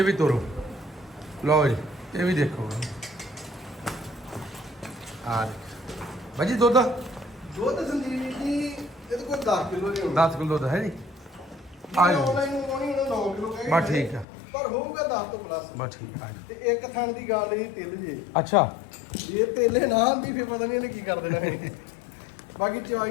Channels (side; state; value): right; drops out; at 14.2 s